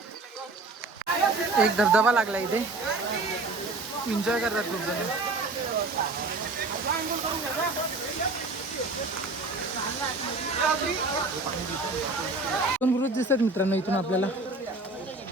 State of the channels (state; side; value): quieter; left; 3.3 dB